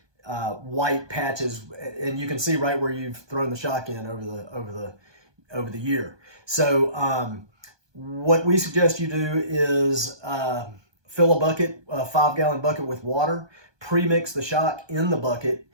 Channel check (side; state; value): left; late; 1.2 ms